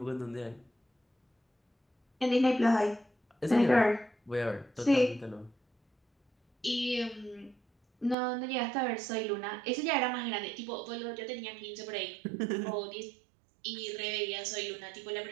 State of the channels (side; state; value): left; drops out; at 8.2 s